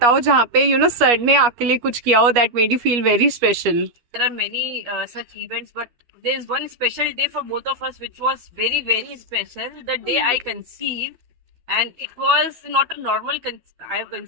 जहाँ पे सर ने आपके लिए कुछ किया हो that made you feel very special. There are many such events, but there is one special day for both of us, which was very, very special. The day I conceived, and it was not a normal. I have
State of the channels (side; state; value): left; late; 12 ms